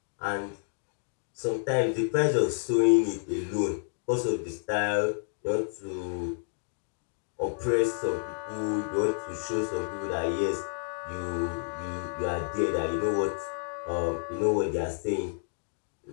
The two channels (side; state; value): right; silent; digital silence